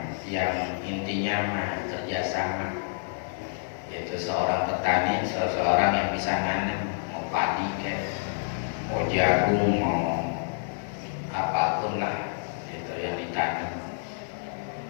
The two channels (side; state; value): right; silent; digital silence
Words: yang intinya mah kerjasama, yaitu seorang petani, seseorang yang bisa nanam, mau padi kayak, mau jagung, mau apapun lah itu yang ditanam.